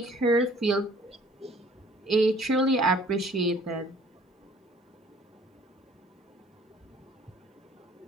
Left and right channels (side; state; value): both; normal; correlation 0.56